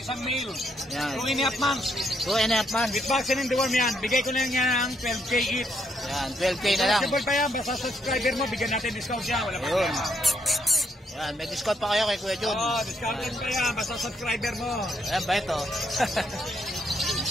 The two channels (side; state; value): both; normal; correlation 0.74